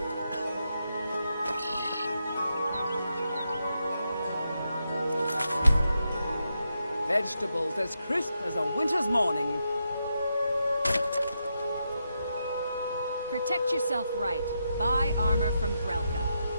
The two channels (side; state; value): both; inverted; correlation -0.84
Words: Vegetables as crisp as a winter's morning. Protect yourself right. Buy armor from